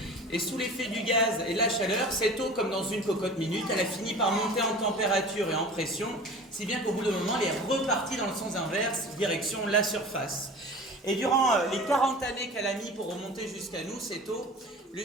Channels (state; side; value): normal; both; correlation 0.39